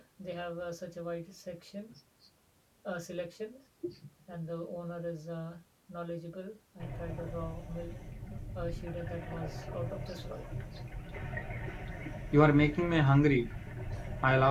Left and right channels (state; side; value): identical; both; correlation 1.00